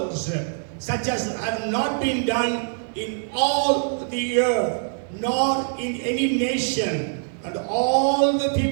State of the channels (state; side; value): silent; left; digital silence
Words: such as have not been done in all the earth, nor in any nation, and all the